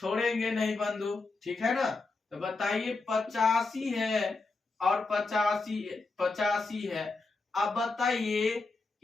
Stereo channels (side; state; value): right; quieter; 3.7 dB